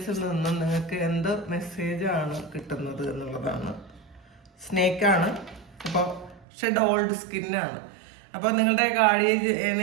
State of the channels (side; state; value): left; drops out; at 6.5 s